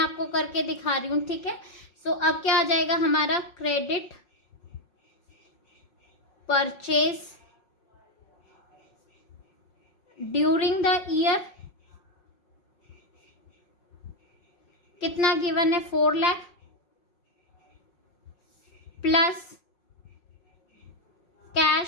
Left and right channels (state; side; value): late; right; 5.5 ms